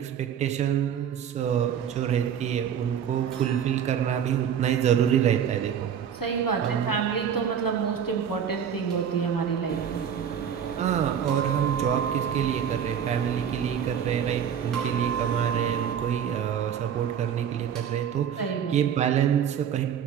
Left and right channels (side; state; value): left; quieter; 8.4 dB